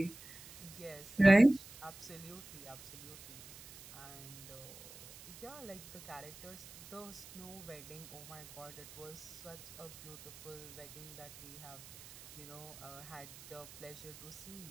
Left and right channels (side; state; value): right; noise; hiss, 16 dB below the sound